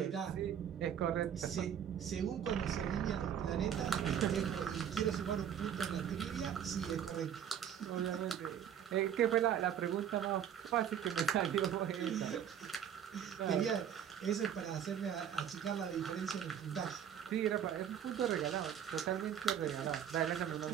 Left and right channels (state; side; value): quieter; left; 9.0 dB